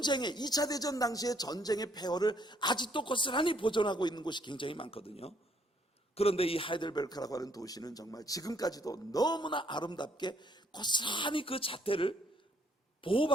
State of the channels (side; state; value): both; normal; correlation 0.66